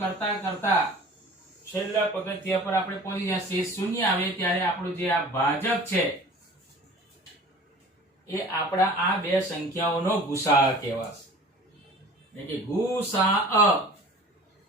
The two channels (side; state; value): both; normal; correlation 0.43